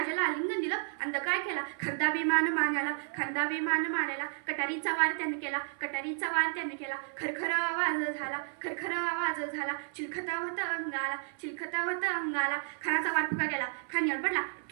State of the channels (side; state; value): left; silent; 56 dB below the other